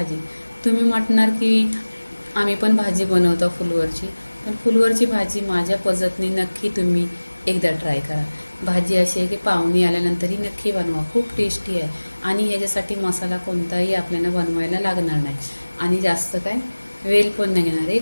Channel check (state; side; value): inverted; both; correlation -1.00